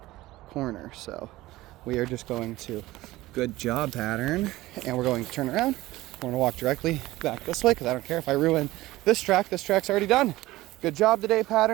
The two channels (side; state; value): left; quieter; 17.7 dB